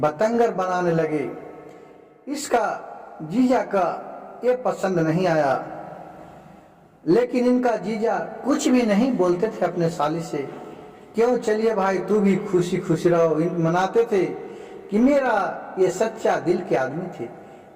बनाने लगे। इसका जीजा का ये पसंद नहीं आया, लेकिन इनका जीजा कुछ भी नहीं बोलते थे अपने साली से। क्यों, चलिए भाई तू भी खुशी खुशी रहो। मनाते थे कि मेरा ये सच्चा दिल के आदमी थे,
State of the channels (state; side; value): identical; both; correlation 1.00